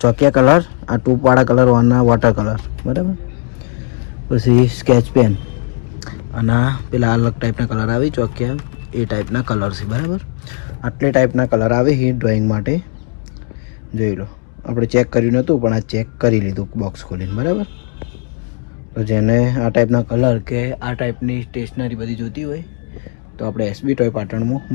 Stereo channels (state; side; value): quieter; right; 39.2 dB